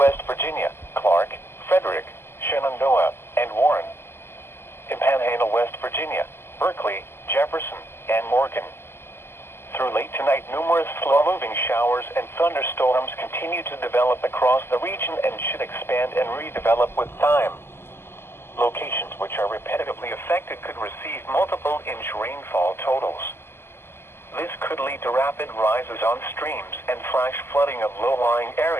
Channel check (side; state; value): right; late; 0.12 ms